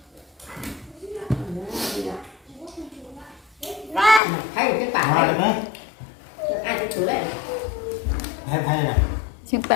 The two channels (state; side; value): drops out; right; at 4.2 s